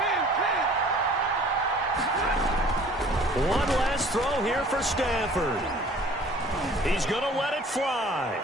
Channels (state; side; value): normal; both; correlation 0.50